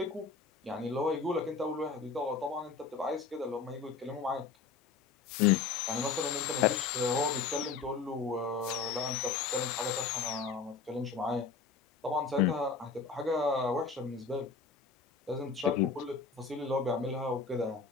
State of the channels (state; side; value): quieter; right; 5.1 dB